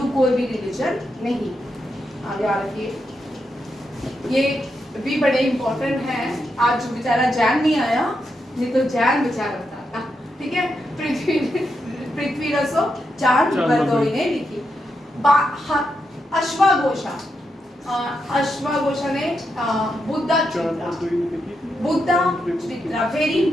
कोई भी रिलीजन नहीं। आगे आ रखिए, ये भी बड़े इंपॉर्टेंट है। आज बेचारा जैन नहीं आया, नहीं तो जैन बेचारा बताता, ठीक है। पृथ्वी रसो चांद बरदोई ने लिखी। अश्वघोषा ने बुद्धा चित्रा, वेरी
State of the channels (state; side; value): normal; both; correlation 0.84